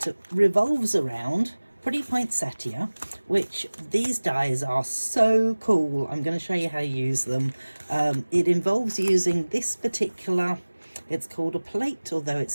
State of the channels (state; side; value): inverted; both; correlation -1.00